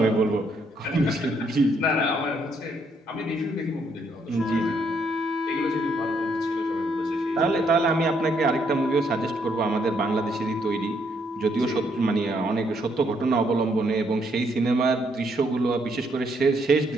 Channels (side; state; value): both; normal; correlation 0.72